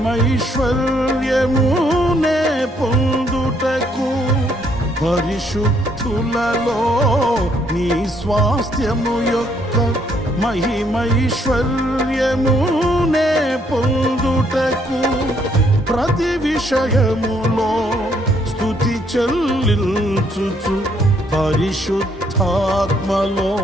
పొందుటకు. పరిశుద్ధులలో నీ స్వాస్థ్యము యొక్క మహిమైశ్వర్యమునే పొందుటకు. ప్రతి విషయములో స్తుతి చెల్లించుచు పరిశుద్ధాత్మలో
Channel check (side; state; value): both; normal; correlation 0.69